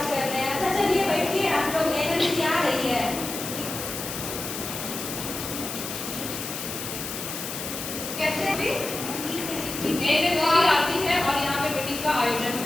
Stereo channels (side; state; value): left; noise; hiss, 6 dB below the sound